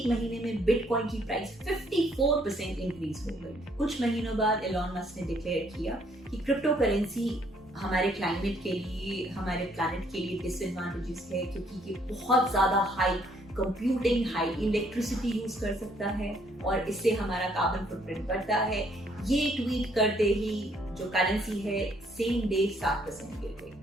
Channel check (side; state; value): both; normal; correlation 0.66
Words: महीने में बिटकॉइन की प्राइस 54% इंक्रीज हो गई। कुछ महीनों बाद इलॉन मस्क ने डिक्लेयर किया कि क्रिप्टो करेंसी हमारे क्लाइमेट के लिए, हमारे प्लैनेट के लिए डिसएडवांटेजेस है, क्योंकि ये बहुत ज्यादा high computing, high electricity use कर सकता है और इससे हमारा कार्बन फुटप्रिंट बढ़ता है। ये ट्वीट करते ही जो करेंसी है सेम डे 7% गिर गई।